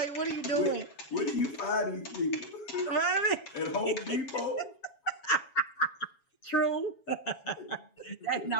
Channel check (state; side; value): late; right; 7.2 ms